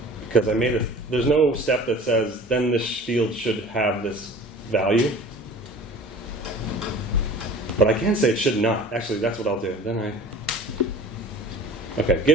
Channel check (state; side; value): normal; both; correlation 0.43